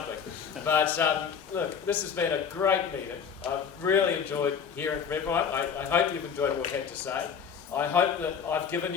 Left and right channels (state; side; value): quieter; right; 7.0 dB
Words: But look, this has been a great meeting. I've really enjoyed hearing from everyone. I hope you've enjoyed what we had to say. I hope that I've given